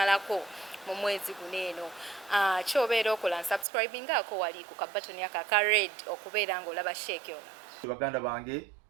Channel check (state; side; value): drops out; left; at 3.7 s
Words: mu mwezi guno eno. Kyobeera okola subscribing ako wali ku kabatoni aka red okubeera ng'olaba Sheikh yo. Baganda bange